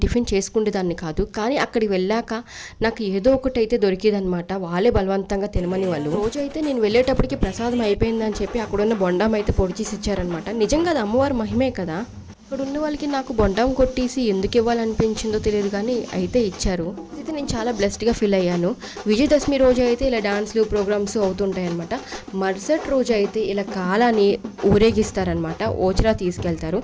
టిఫిన్ చేసుకునేదాన్ని కాదు. కానీ అక్కడికి వెళ్ళాక నాకు ఏదో ఒకటి అయితే దొరికేదనమాట. వాళ్ళే బలవంతంగా తినమని వాళ్ళు. రోజు అయితే నేను వెళ్ళేటప్పటికి ప్రసాదం అయిపోయిందని చెప్పి అక్కడున్న బొండాం అయితే పొడి చేసి ఇచ్చారనమాట. నిజంగా అది అమ్మవారి మహిమే కదా. ఇక్కడ ఉన్న వాళ్ళకి నాకు బొండాం కొట్టేసి ఎందుకు ఇవ్వాలనిపించిందో తెలియదు కానీ అయితే ఇచ్చారు. అయితే నేను చాలా బ్లెస్డ్గా ఫీల్ అయ్యాను. విజయదశమి రోజు అయితే ఇలా డాన్స్లు ప్రోగ్రామ్స్ అవుతుంటాయి అనమాట. మరుసటి రోజు అయితే ఇలా కాలాన్ని ఊరేగిస్తారనమాట. ఓచిరా తీసుకెళ్తారు.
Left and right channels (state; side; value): identical; both; correlation 1.00